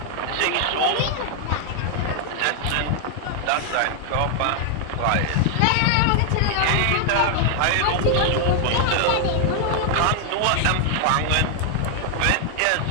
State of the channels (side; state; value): both; different; correlation 0.00